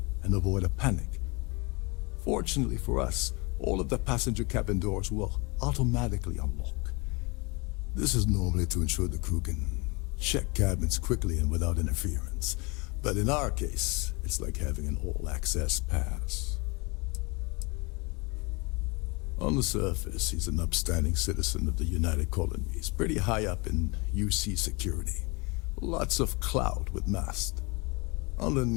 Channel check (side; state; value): right; quieter; 28.2 dB